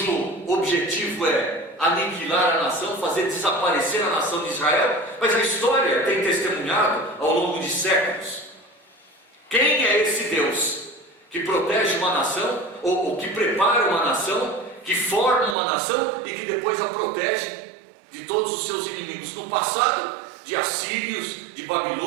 objetivo é aniquilar a nação, fazer desaparecer a nação de Israel. Mas a história tem testemunhado ao longo de séculos. Quem é esse Deus que protege uma nação, ou que prepara uma nação, que forma uma nação e que depois a protege de todos os seus inimigos? No passado, de assírios, de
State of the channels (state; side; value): drops out; left; at 15.6 s